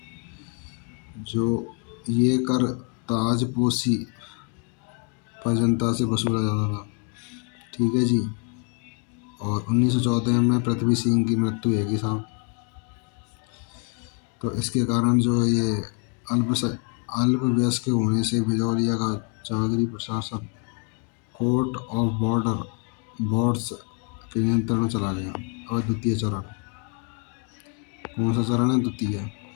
जो ये कर ताजपोशी पर जनता से वसूला जाता था। ठीक है जी। और 1914 में पृथ्वी सिंह की मृत्यु हैगी साहब। तो इसके कारण जो ये अल्पवयस्क होने से बिजौलिया का जागीरी प्रशासन कोर्ट ऑफ बोर्ड्स के नियंत्रण में चला गया। और द्वितीय चरण, कौन सा चरण है? द्वितीय।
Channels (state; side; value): quieter; right; 35.6 dB